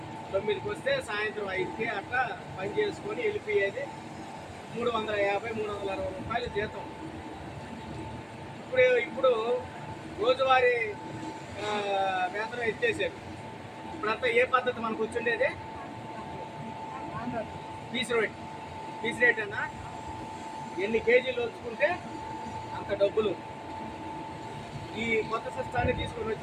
9కి వస్తే సాయంత్రం 5కి అట్లా పని చేసుకొని వెళ్ళిపోయేది. 350-360 రూపాయలు జీతం. ఇప్పుడు రోజువారీ వేతనం ఎత్తేసారు. ఇప్పుడంతా ఏ పద్ధతి మనకు వచ్చిండేది? పీస్ రేట్ అన్నా ఎన్ని కేజీలు వచ్చుకుంటే అంత డబ్బులు. ఈ కొత్త సిస్టాన్ని తీసుకొని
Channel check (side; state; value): both; identical; correlation 1.00